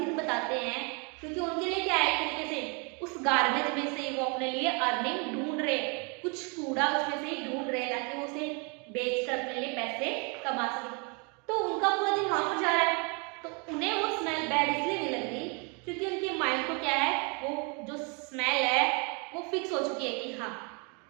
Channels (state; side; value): quieter; left; 33.5 dB